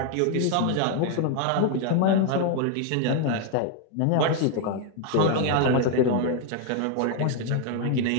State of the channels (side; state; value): both; different; correlation 0.00